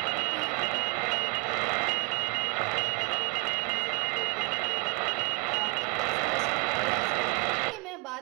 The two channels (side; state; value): left; quieter; 31.1 dB